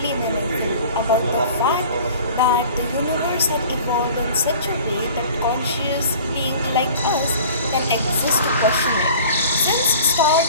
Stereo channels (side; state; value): both; inverted; correlation -0.45